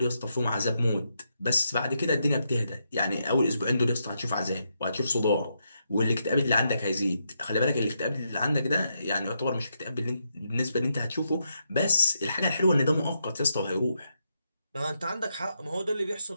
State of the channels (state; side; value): inverted; both; correlation -0.81